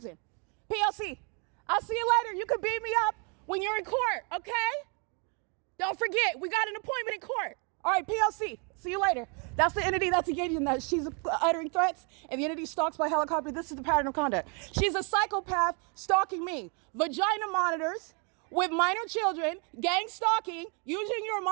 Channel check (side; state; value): left; quieter; 36.0 dB